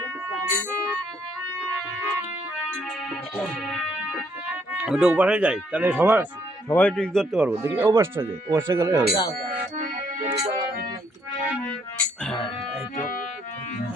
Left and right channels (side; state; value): both; normal; correlation 0.69